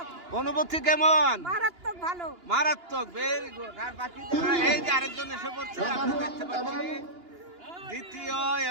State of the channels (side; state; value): left; late; 2.9 ms